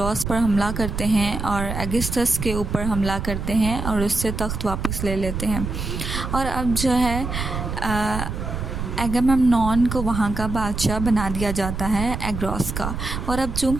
पर हमला करते हैं और एगिस्थस के ऊपर हमला करते हैं और उससे तख्त वापस ले लेते हैं। और अब जो है एगामेम्नॉन को वहाँ का बादशाह बना दिया जाता है, एग्रोस का। और अब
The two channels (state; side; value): noise; right; rumble, 5 dB below the sound